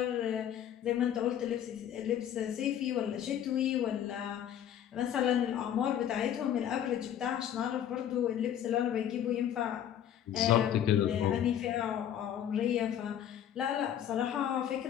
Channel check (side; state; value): right; quieter; 10.2 dB